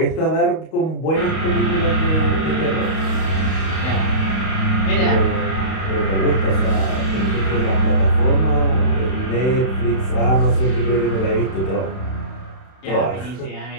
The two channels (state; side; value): late; right; 31 ms